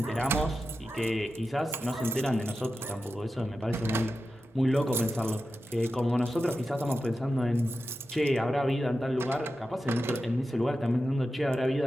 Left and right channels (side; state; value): both; normal; correlation 0.91